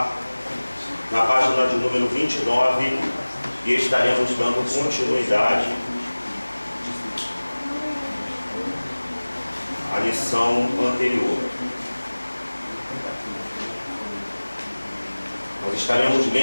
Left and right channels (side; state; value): both; inverted; correlation -1.00